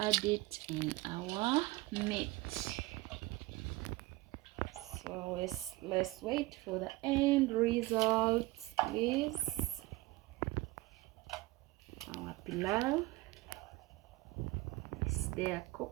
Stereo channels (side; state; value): left; quieter; 20.3 dB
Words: it in our meat. So let's wait for the end results, please. Our pilau is there